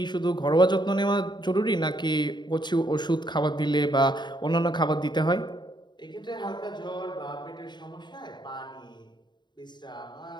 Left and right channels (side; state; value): right; late; 0.21 ms